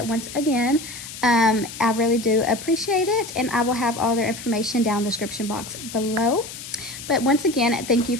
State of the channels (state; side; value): noise; left; hiss, 12 dB below the sound